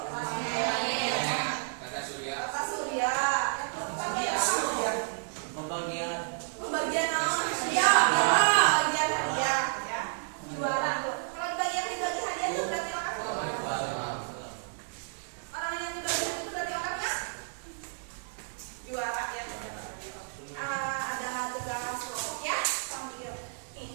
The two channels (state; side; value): silent; left; digital silence